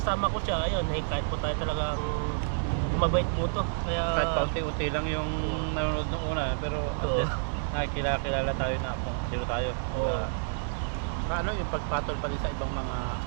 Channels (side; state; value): left; silent; digital silence